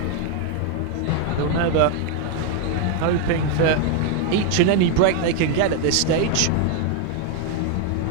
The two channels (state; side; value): different; both; correlation 0.01